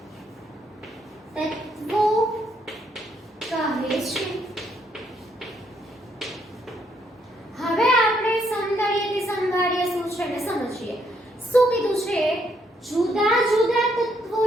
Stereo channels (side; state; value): both; normal; correlation 0.73